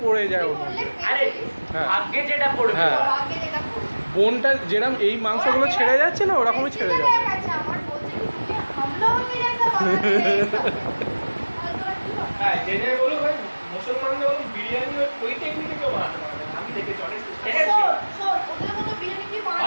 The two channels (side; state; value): both; inverted; correlation -1.00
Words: পড়ে যায় ওর মধ্যে আরে হ্যাঁ। আগে যেটা পড়বে হ্যাঁ। আগে যেটা পড়ে। বোনটা যেরকম এই মাংসগুলো ছেড়ে যাচ্ছে না ওরকমই ছেড়ে যাবে আচ্ছা আমার বলছে কি তুমি हम लोगों के जैसा बनाते हैं ये सब। আর তোরা কি বল? হ্যাঁ জেনে বলো ভাই মুসলমানরা বলো বিরিয়ানি ওই টেকনিকে কেউ বানাতে পারবে না আমি দেখেছি অনেক শোন, শোন, ওদের মতো বিরিয়ানি কি